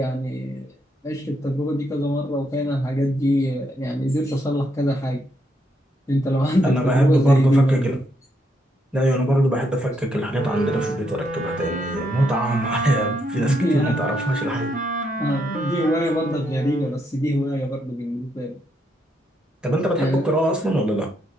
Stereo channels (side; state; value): both; normal; correlation 0.77